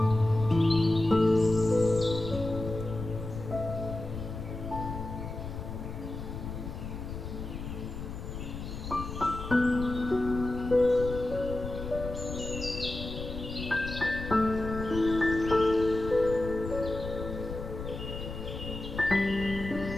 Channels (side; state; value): left; noise; rumble, 8 dB below the sound